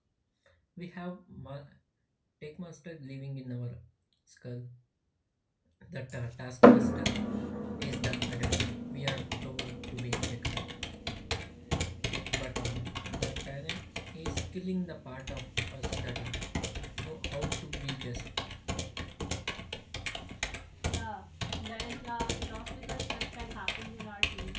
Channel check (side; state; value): both; identical; correlation 1.00